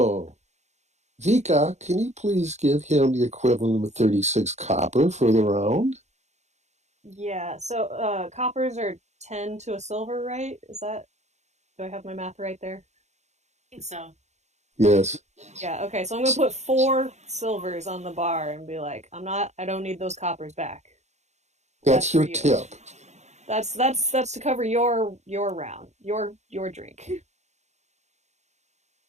Vika, can you please give him the equivalent of 36 copper for the round? Yeah. So coppers are 10 to a silver, right? Is that, do I have my math right there? I think so. Yes, Yeah, okay. So I'm gonna put 4 silvers on the bar and be like, I don't need those coppers back. That's that's for your you. tip. That's to cover your round, your drink.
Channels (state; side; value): late; left; 0.33 ms